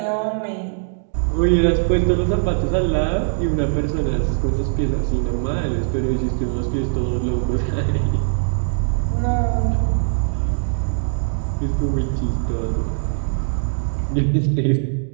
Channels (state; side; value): silent; left; digital silence